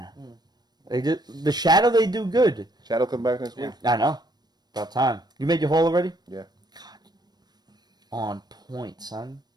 they did the Shadow. They do good. Shadow come back next week? I know. About time. You made your haul already? Yeah. On point, son.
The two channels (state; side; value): late; left; 0.19 ms